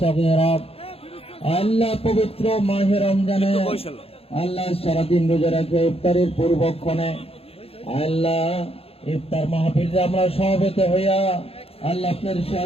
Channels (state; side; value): late; right; 0.28 ms